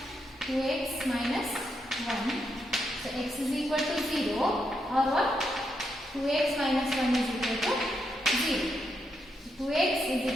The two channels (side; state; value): both; normal; correlation 0.81